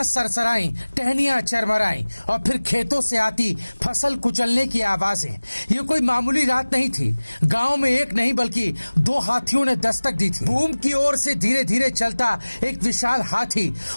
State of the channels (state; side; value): inverted; both; correlation -1.00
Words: सरसराई, टहनियां चरमराई और फिर खेतों से आती फसल कुचलने की आवाजें। ये कोई मामूली रात नहीं थी। गांव में एक नहीं बल्कि दो हाथियों ने दस्तक दी थी। भूम की ओर से धीरे धीरे चलता एक विशाल हाथी